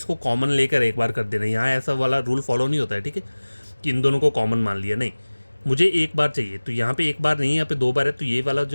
कॉमन लेकर एक बार कर देना, यहाँ ऐसा वाला रूल फॉलो नहीं होता है, ठीक है, कि इन दोनों को कॉमन मान लिया, नहीं, मुझे एक बार चाहिए। तो यहाँ पे एक बार नहीं, यहाँ पे दो बार है, तो ये वाला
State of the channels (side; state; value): both; inverted; correlation -1.00